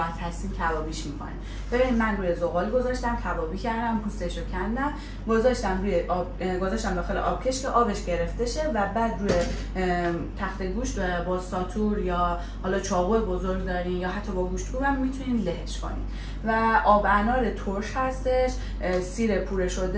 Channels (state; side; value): identical; both; correlation 1.00